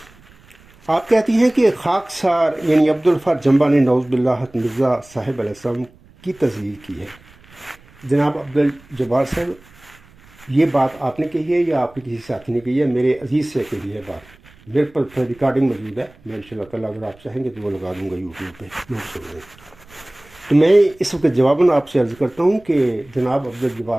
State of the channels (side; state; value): right; noise; rumble, 27 dB below the sound